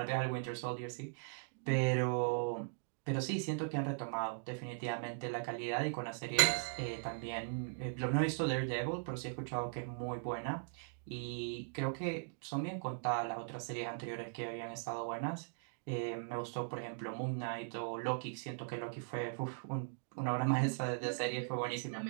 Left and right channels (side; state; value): left; silent; digital silence